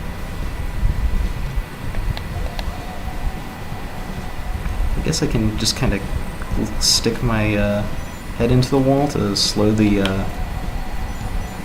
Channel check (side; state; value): both; identical; correlation 1.00